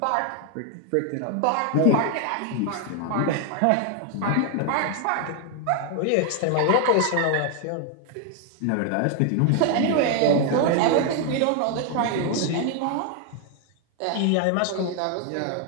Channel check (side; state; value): both; different; correlation 0.00